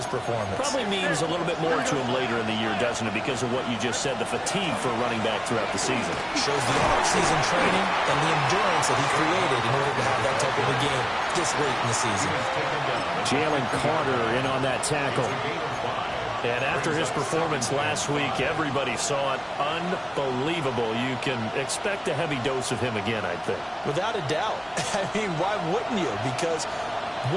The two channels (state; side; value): identical; both; correlation 1.00